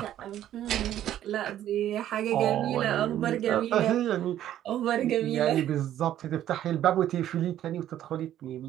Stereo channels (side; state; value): left; quieter; 11.8 dB